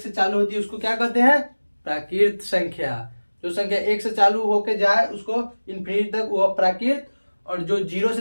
चालू होती है उसको क्या कहते हैं, प्राकृत संख्या। जो संख्या 1 से चालू होके जाए उसको इन्फिनिटी तक वो प्राकृत, और जो 0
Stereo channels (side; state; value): both; inverted; correlation -1.00